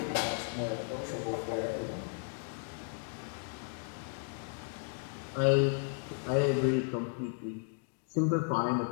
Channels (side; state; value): right; silent; 55 dB below the other